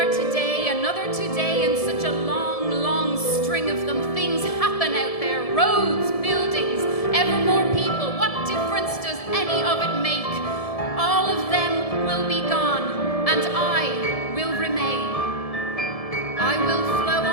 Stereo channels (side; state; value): right; late; 1.7 ms